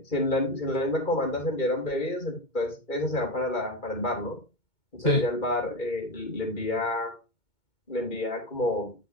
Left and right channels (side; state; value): right; late; 2.2 ms